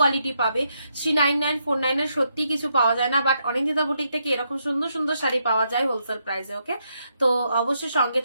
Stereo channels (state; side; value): inverted; both; correlation -0.79